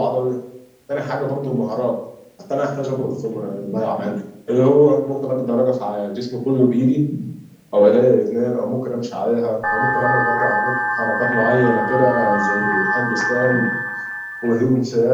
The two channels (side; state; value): both; identical; correlation 1.00